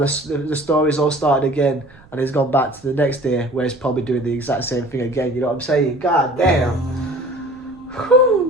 story's all started again, and he's gone back to the next day where he's probably doing the exact same thing again, you know what I'm saying? God damn.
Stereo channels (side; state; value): right; noise; rumble, 25 dB below the sound